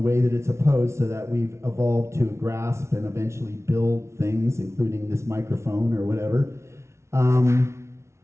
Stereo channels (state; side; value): late; left; 0.13 ms